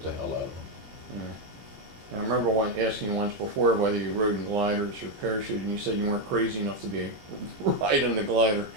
the hell out of them. Yeah. I remember asking you once before whether you rode in gliders or parachuting, and you said you weren't crazy enough to be riding the glider.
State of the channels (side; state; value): left; late; 19 ms